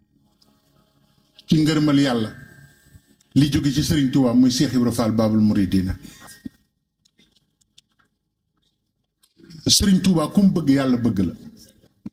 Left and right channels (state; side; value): identical; both; correlation 1.00